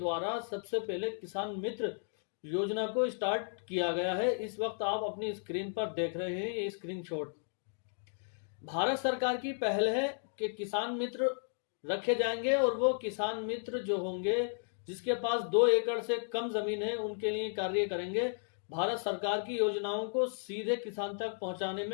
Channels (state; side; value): silent; right; digital silence